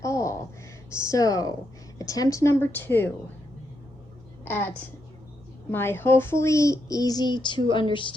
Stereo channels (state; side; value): normal; both; correlation 0.81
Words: all. So, attempt number 2 at my hopefully easy to